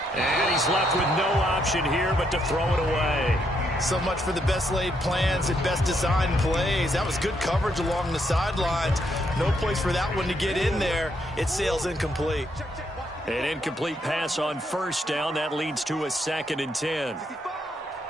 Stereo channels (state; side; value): normal; both; correlation 0.75